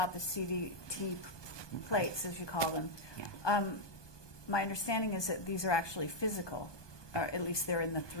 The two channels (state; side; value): late; right; 1.2 ms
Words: the CDT plates, as you call them. Yeah. My understanding is that these are actually physical, or at least they're in the